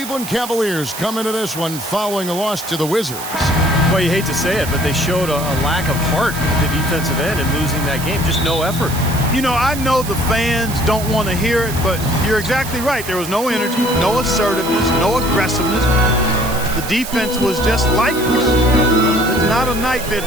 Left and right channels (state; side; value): noise; right; hiss, 10 dB below the sound